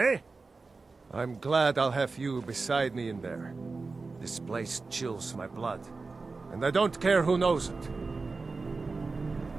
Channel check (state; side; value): quieter; left; 4.0 dB